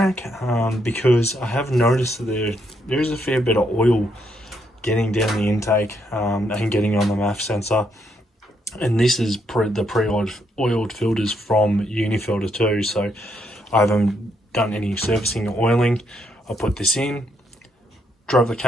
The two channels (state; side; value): normal; both; correlation 0.76